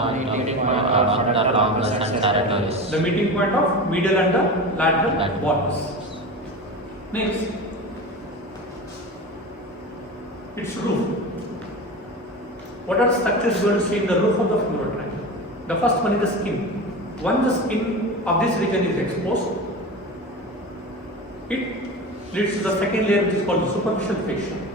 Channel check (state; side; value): normal; both; correlation 0.28